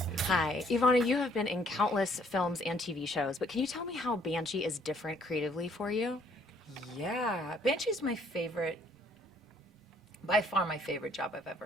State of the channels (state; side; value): normal; both; correlation 0.63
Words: Hi, Ivana, you have been in countless films and TV shows, but can you tell me how Banshee is different creatively for you? Yeah, Banshee's my favorite, by far my favorite job I've